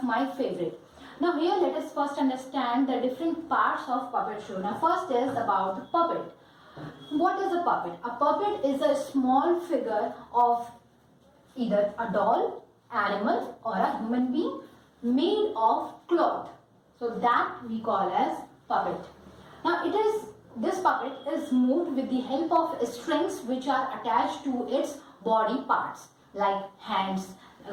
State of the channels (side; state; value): both; identical; correlation 1.00